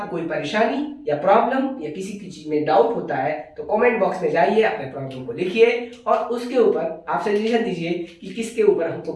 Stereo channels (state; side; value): identical; both; correlation 1.00